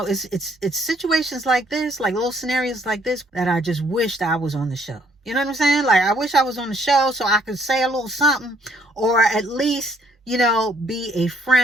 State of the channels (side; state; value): both; normal; correlation 0.65